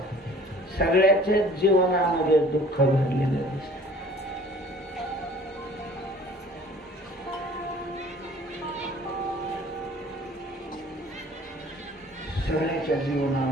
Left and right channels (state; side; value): normal; both; correlation 0.50